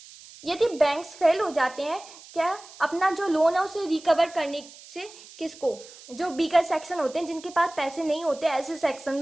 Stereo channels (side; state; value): right; noise; hiss, 19 dB below the sound